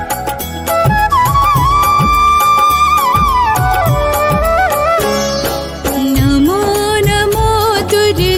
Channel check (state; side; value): identical; both; correlation 1.00